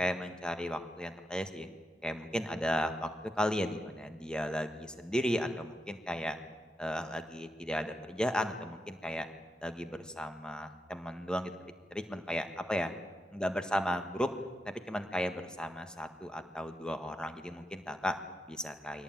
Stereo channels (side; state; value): both; normal; correlation 0.85